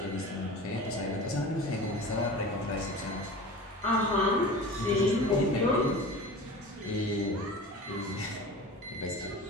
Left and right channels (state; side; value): normal; both; correlation 0.36